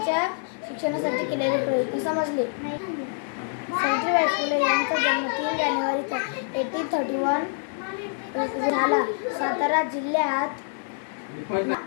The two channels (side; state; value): right; silent; 61 dB below the other